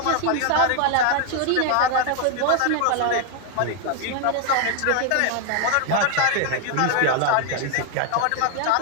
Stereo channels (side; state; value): both; different; correlation 0.00